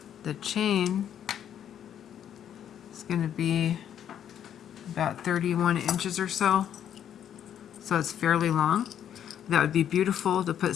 The chain is going to be about 31 inches or so. So it's fairly long. That would be beautiful to put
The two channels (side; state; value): right; quieter; 9.7 dB